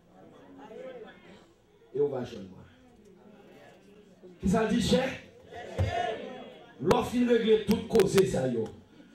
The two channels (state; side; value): identical; both; correlation 1.00